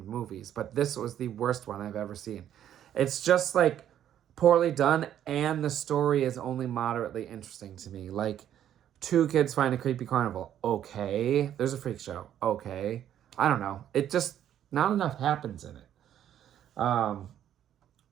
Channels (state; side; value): quieter; left; 10.6 dB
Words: movies, but this was the worst one I've ever seen. It's just like poorly done, and the story is only moderately interesting to me. Like, two kids find a creepy carnival. Okay. There's a freak show. Okay. I don't know. It just, not enough happens in it.